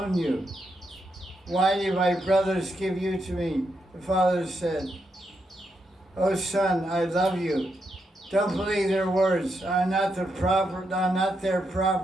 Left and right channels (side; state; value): both; normal; correlation 0.82